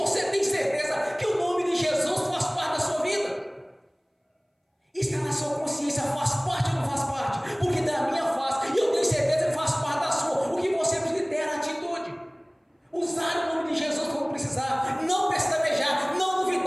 tem certeza que o nome de Jesus faz parte da sua vida. Está na sua consciência, faz parte ou não faz parte? Porque da minha faz, e eu tenho certeza que faz parte da sua. O que você precisa ter é a atitude. Usar o nome de Jesus quando precisar, não pestanejar, não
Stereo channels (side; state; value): both; identical; correlation 1.00